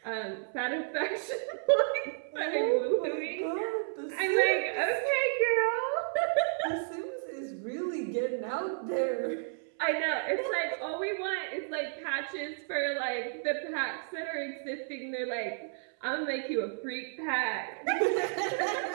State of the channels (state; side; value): silent; left; 56 dB below the other